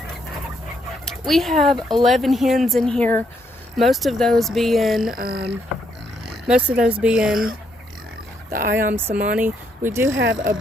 We have 11 hens in here. Most of those being the Ayam Samani. We do have a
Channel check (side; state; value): both; normal; correlation 0.74